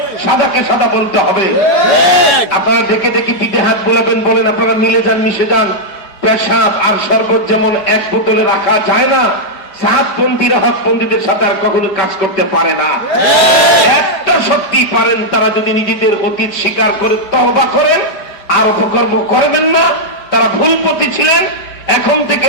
সাদাকে সাদা বলতে হবে। আপনারা দেখে দেখি পিঠে হাত বোলাবেন, বলেন আপনারা মিলে যান, মিশে যান। পেশাব আর শরবত যেমন এক বোতলে রাখা যায় না, সাতপন্থীরা হকপন্থীদের সাথে আর কখনো কাজ করতে পারে না। একটা সত্যি পারেন, তারা যদি নিজেদের অতীত স্বীকার করে তওবা করেন আর অপকর্ম করবেন না। তারা ভুল পথে ছিলেন, এখন থেকে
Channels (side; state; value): right; late; 4.9 ms